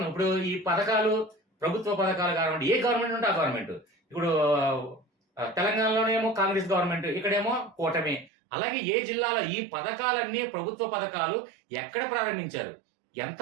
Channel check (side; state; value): left; drops out; at 8.3 s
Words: ఇప్పుడు ఈ పథకాలు ప్రభుత్వ పథకాలు కానివ్వండి, ఏ గవర్నమెంట్ ఉంటే ఆ గవర్నమెంట్. ఇప్పుడు తెలంగాణలోనేమో కాంగ్రెస్ గవర్నమెంట్, ఇక్కడేమో కూటమి. అలాగే ఏ జిల్లాలో ఈ పథకాలన్నీ ప్రభుత్వ పథకాలు ఎక్కడ ప్రారంభించారు, ఎంత